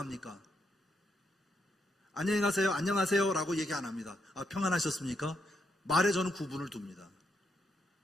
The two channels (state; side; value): normal; both; correlation 0.79